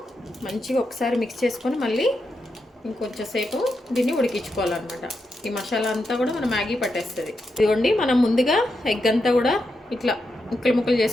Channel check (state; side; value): normal; both; correlation 0.85